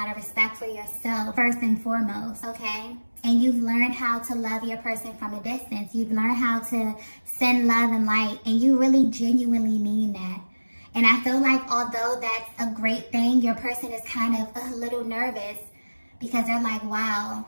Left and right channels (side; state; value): both; inverted; correlation -1.00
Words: of respect for yourself, first and foremost, okay? And you've learned how to love your person from a distance. You've learned how to send love and light, and you really genuinely mean that. And I feel like although that's a great thing, your person is kind of a little nervous because they're like, wow,